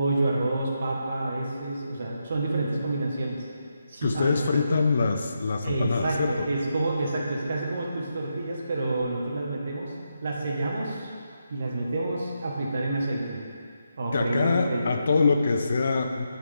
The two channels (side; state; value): both; inverted; correlation -0.83